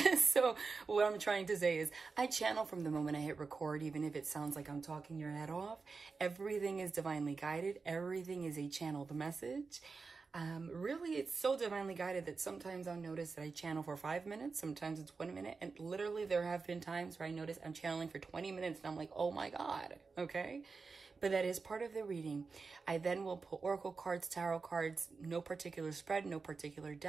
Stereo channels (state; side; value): quieter; left; 4.5 dB